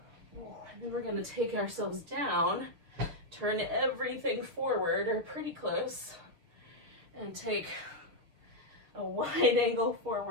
And then we're going to take ourselves down, turn everything forward or pretty close, and take a wide angle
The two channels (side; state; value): left; late; 6.6 ms